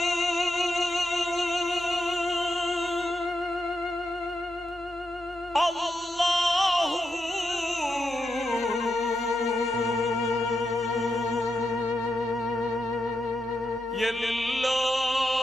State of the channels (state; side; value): normal; both; correlation 0.85